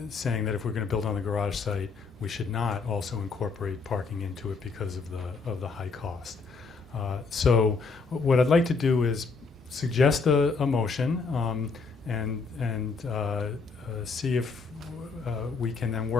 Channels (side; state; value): right; quieter; 4.5 dB